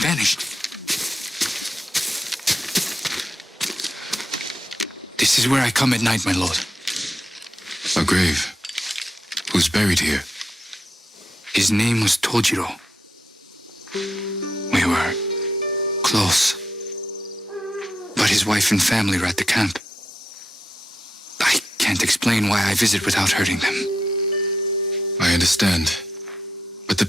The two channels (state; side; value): normal; both; correlation 0.84